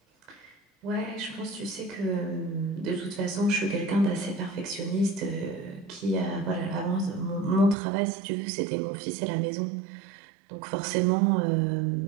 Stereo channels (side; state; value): left; drops out; at 7.8 s